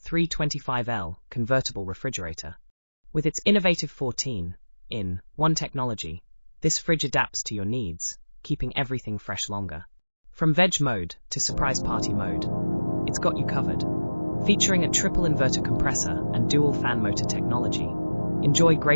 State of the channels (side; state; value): both; inverted; correlation -1.00